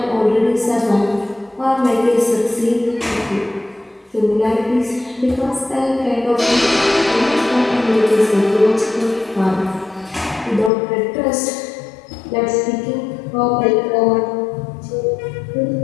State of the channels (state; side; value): drops out; right; at 10.7 s